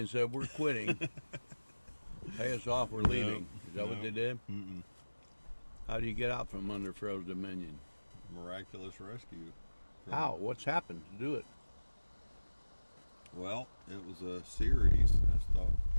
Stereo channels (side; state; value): both; inverted; correlation -1.00